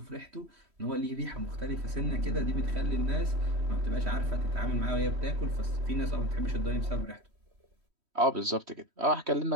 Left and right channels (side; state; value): left; late; 3.1 ms